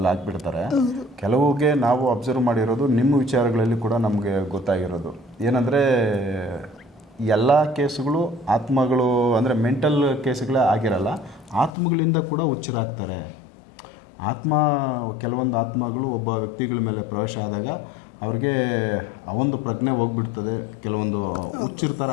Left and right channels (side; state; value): right; drops out; at 11.7 s